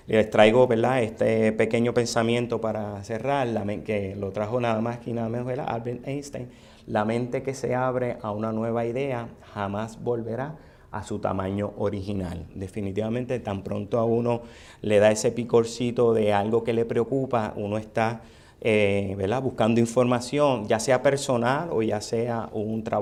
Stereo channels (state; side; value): identical; both; correlation 1.00